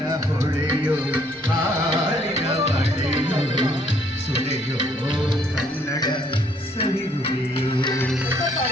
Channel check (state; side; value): normal; both; correlation 0.65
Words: ಹೊಳೆಯೋ ಹಾಡಿನ ಮಳೆಯೋ ಸುಳೆಯೋ ಕನ್ನಡ ಸವಿನುಡಿಯೋ